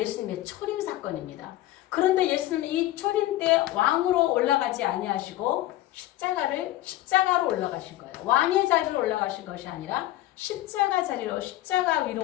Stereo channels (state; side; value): quieter; right; 15.4 dB